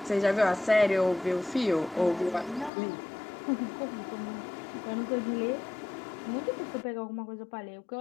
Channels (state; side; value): drops out; right; at 2.7 s